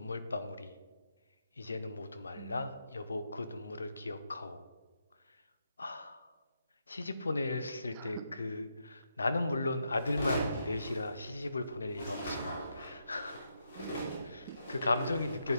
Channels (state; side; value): inverted; both; correlation -0.81